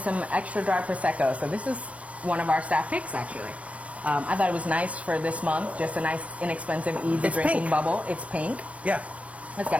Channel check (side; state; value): left; late; 0.065 ms